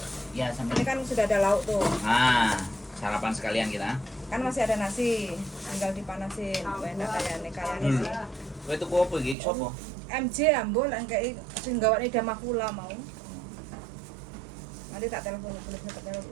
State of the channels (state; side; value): drops out; left; at 9.3 s